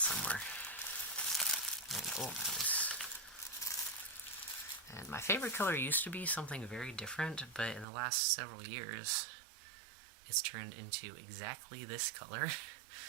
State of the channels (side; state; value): left; drops out; at 7.9 s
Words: And, oh, nice. And my favorite color used to be something very different, but in the last several years, it's turned into exactly this color.